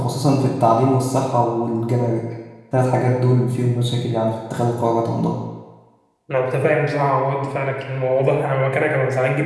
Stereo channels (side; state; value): both; identical; correlation 1.00